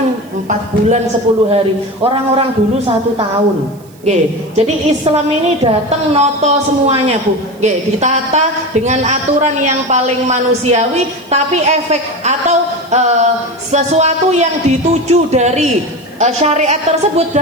4 bulan 10 hari, orang-orang dulu 1 tahun. Jadi Islam ini datang noto semuanya Bu. Ditata dengan aturan yang paling manusiawi, tapi efek atau sesuatu yang dituju dari syariat tersebut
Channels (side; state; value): right; noise; hiss, 28 dB below the sound